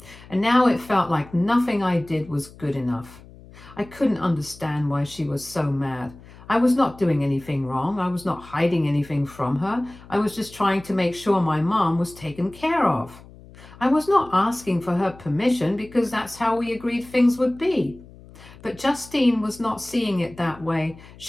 and now it felt like nothing I did was good enough. I couldn't understand why she was so mad. I was not doing anything wrong. I was not hiding anything from her. I was just trying to make sure my mom was taken care of. I was not asking for her permission because that's how we agreed things would be. But Justine was not seeing it that way.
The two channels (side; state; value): left; noise; hum, 21 dB below the sound